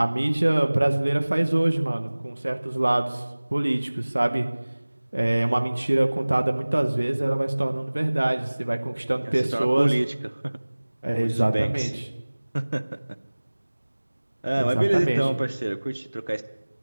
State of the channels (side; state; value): both; inverted; correlation -1.00